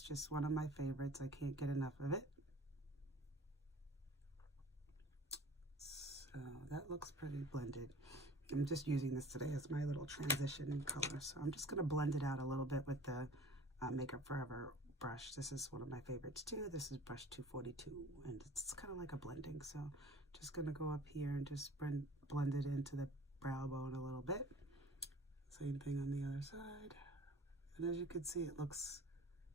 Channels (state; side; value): normal; both; correlation 0.45